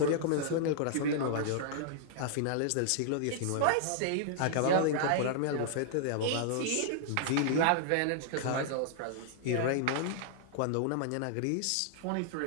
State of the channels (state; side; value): different; both; correlation -0.01